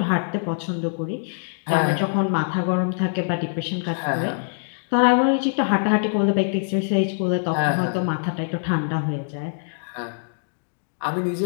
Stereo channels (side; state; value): right; silent; digital silence